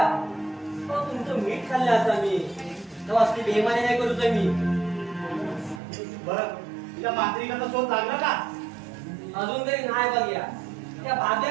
तुमचं मीठ खाल्लं आता मी असली बेमारी नाही करूच मी त्या मांत्रिकाचा शोध लागला का? अजून तरी नाही बघूया. त्या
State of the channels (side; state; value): left; drops out; at 5.8 s